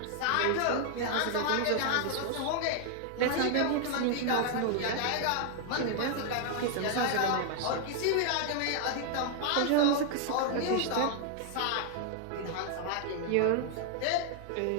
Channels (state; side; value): different; both; correlation 0.00